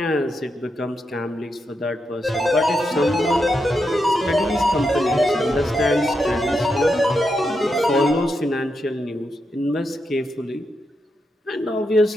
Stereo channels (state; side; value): normal; both; correlation 0.84